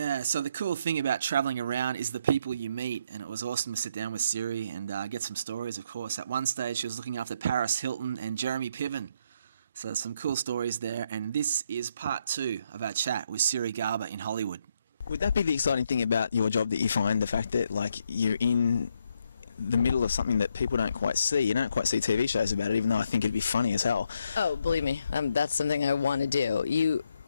So the cool thing about traveling around is the people you meet, and it was awesome to sit down with Siri and get some stories, of course. At one stage, she was looking after Paris Hilton and Jeremy Piven. So there's some cool stories there, and this is part 2 of our chat with Siri Garber in Hollywood. Would that be the exciting thing about your job, that you find the fact that like you're in the middle of something that people don't quite see? You don't quite see TV shows about it, even though I think it'd be funny as hell. Oh, believe me, that's something I want to do.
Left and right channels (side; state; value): both; inverted; correlation -0.76